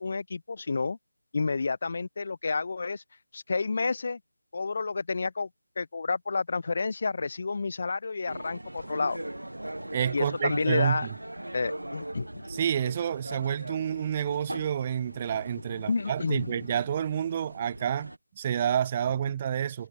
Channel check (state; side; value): inverted; both; correlation -0.80